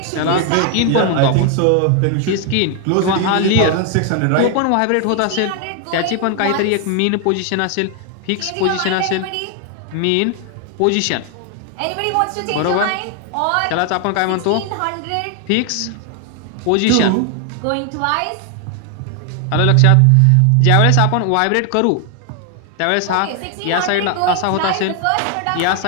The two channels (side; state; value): both; different; correlation 0.00